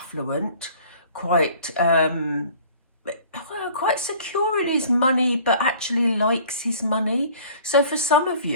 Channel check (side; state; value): both; inverted; correlation -0.50